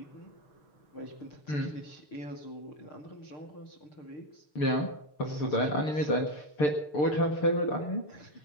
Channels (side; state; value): right; late; 6.7 ms